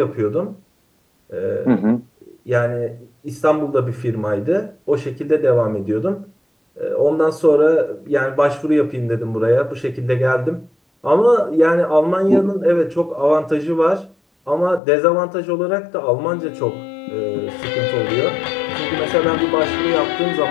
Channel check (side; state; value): right; drops out; at 14.8 s